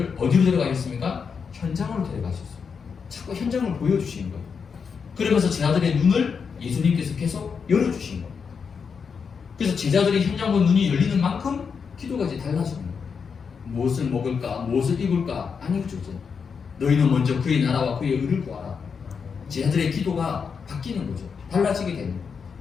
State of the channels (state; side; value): quieter; right; 6.0 dB